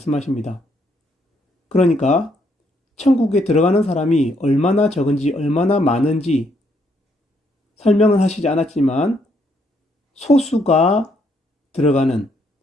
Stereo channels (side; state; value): both; normal; correlation 0.72